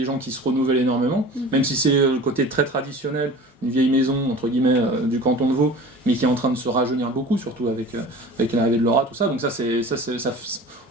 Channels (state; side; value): normal; both; correlation 0.40